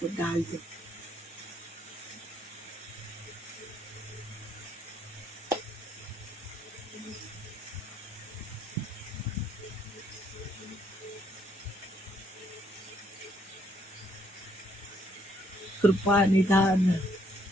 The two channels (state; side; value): normal; both; correlation 0.70